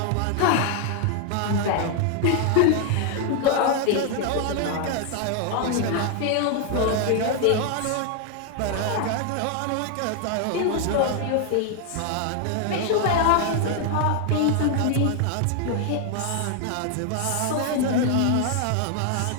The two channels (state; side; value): different; both; correlation 0.00